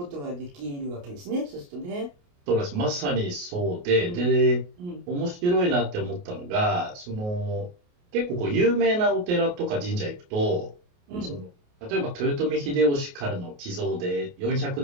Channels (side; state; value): left; late; 28 ms